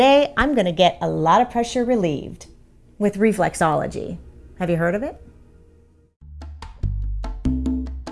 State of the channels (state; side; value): identical; both; correlation 1.00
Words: I'm going to get a lot of pressure relieved with reflexology. Have you heard of it?